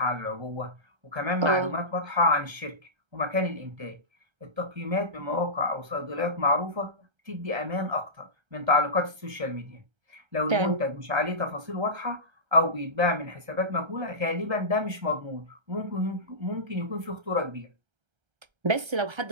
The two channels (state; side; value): late; left; 1.3 ms